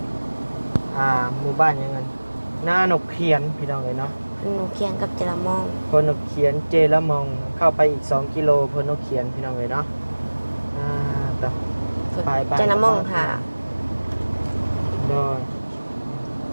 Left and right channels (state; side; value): inverted; both; correlation -1.00